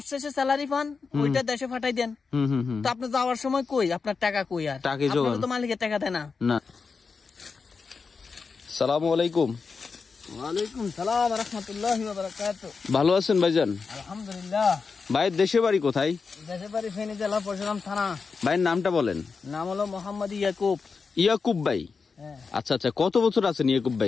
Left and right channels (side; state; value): right; quieter; 5.0 dB